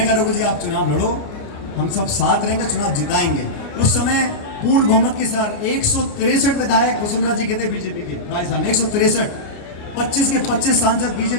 कहा रघु जी आप चुनाव लड़ो, हम सब साथ रहेंगे, चुनाव जिताएंगे। उस समय पूर्ण बहुमत के साथ 163 विधायक वसुंधरा जी के थे बीजेपी के राजस्थान, 163, 25 के 25 सांसद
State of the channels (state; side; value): late; right; 29 ms